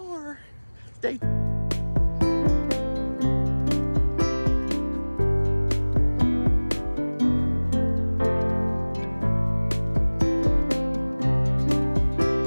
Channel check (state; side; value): inverted; both; correlation -1.00